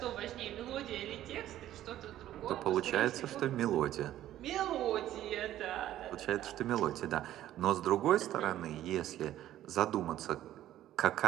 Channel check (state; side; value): quieter; left; 13.0 dB